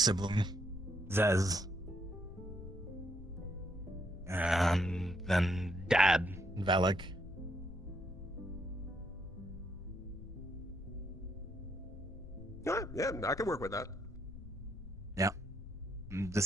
Zez. And then Dad, Valak. Yeah, I can work with that. Yeah.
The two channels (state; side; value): noise; left; rumble, 14 dB below the sound